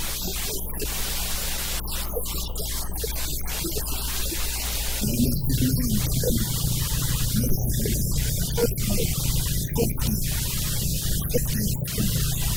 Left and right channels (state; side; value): noise; left; hum, 10 dB below the sound